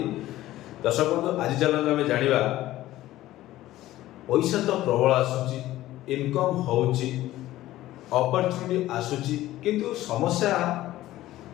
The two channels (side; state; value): right; quieter; 15.4 dB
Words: दर्शक बंधु आज चलते आम जाना पैसा तो प्रबल आसूची इनकम होची अपॉर्चुनिटी आसूची किंतु समस्या